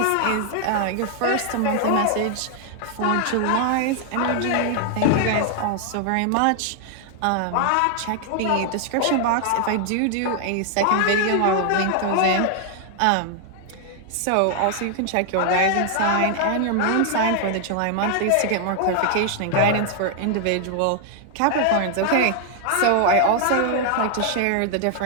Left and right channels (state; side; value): different; both; correlation 0.00